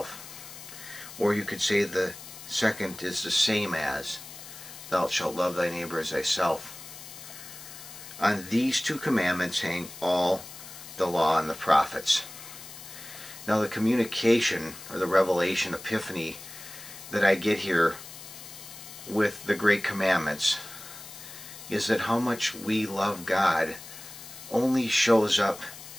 Or you could say the second is the same as, Thou shalt love thy neighbor as thyself. On these two commandments hang all the law and the prophets. Now the communication, or the revelation, epiphany, that I get here with the great commandments is that how much we love God only shows up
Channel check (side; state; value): left; noise; hiss, 14 dB below the sound